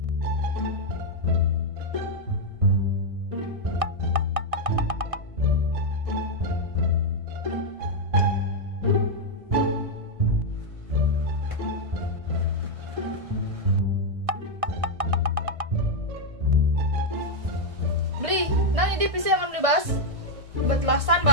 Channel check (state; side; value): late; left; 1.7 ms